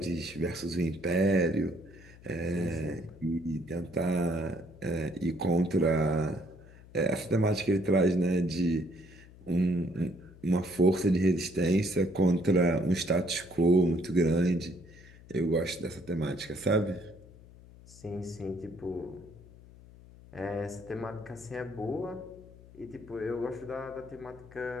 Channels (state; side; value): noise; left; hum, 21 dB below the sound